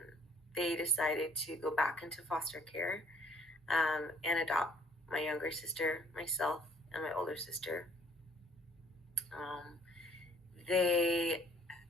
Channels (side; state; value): both; normal; correlation 0.59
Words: they decided to go back into foster care and adopt my younger sister, myself, and my older sister. Um, they